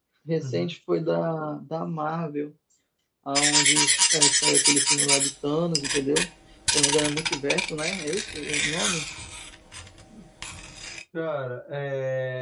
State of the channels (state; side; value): identical; both; correlation 1.00